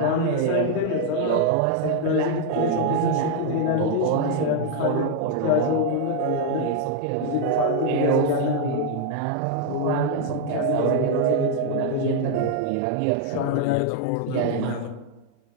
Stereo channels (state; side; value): different; both; correlation 0.00